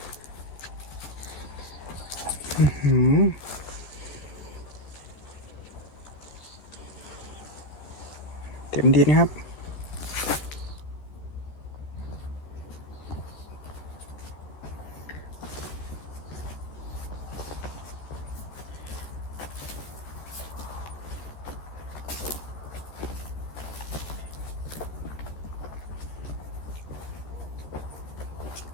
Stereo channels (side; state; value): right; late; 14 ms